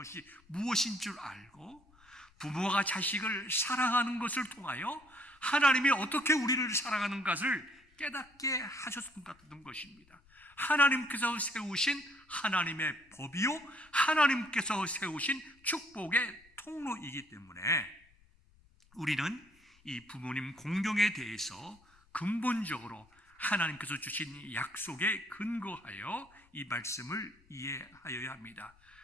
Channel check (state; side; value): noise; left; rumble, 30 dB below the sound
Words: 무엇인 줄 알고 부모가 자식을 사랑하는 것을 통하여 하나님이 어떻게 우리를 사랑하는 것을 깨닫게 하셨던 것입니다. 하나님께서 세우신 하나님의 법이요 하나님께서 세우신 축복의 통로이기 때문에 우리는 이 부모님 공경에 대해서 근본적으로 하나님께서 주신 약속에 근거하여 이 말씀을 이해하여야 합니다.